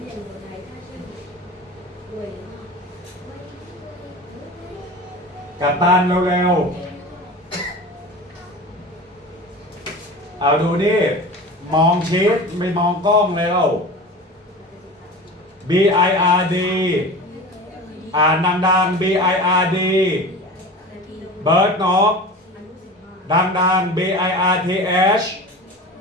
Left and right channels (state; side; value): normal; both; correlation 0.34